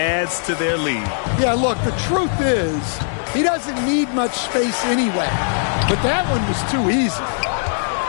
to their lead. Yeah, look, the truth is, he doesn't need much space anyway. But that one was too easy.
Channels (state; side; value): silent; right; digital silence